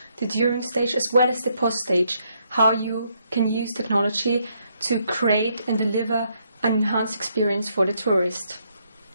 the during stage, as well as the post-stage, how you can use technology to create and deliver an enhanced experience for the tourist.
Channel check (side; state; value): both; inverted; correlation -0.74